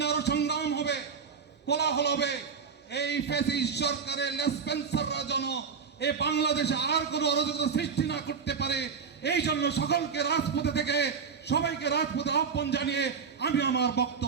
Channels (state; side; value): quieter; left; 6.0 dB